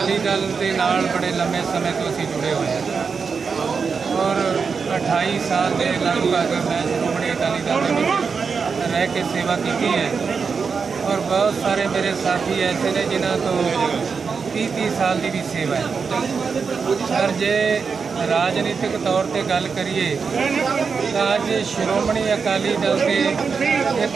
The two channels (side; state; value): left; quieter; 5.5 dB